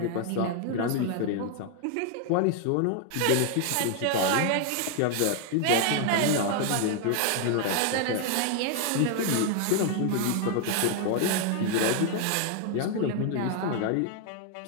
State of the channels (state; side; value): different; both; correlation 0.00